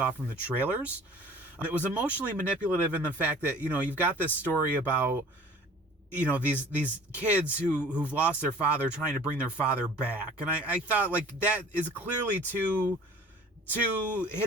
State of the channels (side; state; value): both; normal; correlation 0.48